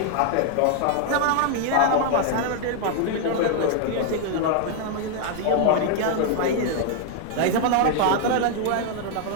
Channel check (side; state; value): both; different; correlation 0.00